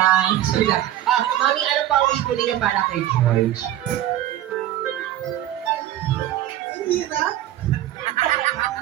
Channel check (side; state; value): left; quieter; 13.1 dB